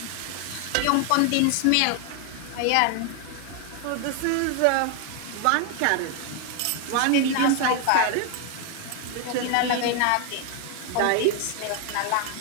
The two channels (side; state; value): both; different; correlation 0.00